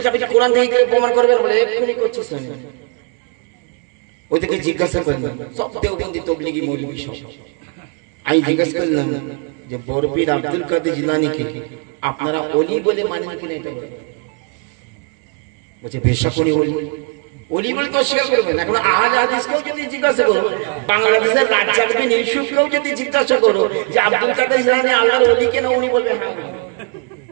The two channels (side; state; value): left; quieter; 33.6 dB